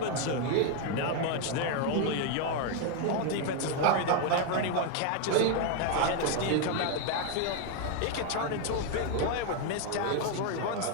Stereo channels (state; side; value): different; both; correlation 0.01